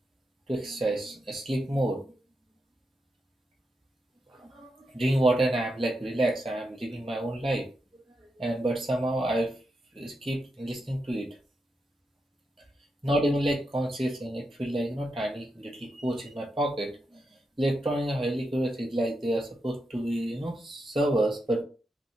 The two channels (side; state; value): both; normal; correlation 0.85